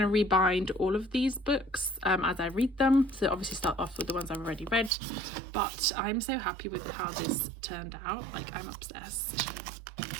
to rebind all of these books as I read them. So obviously start off with the ones I've already read, but I'm so happy with how this turned out. Like, I'm obsessed.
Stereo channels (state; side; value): drops out; left; at 4.9 s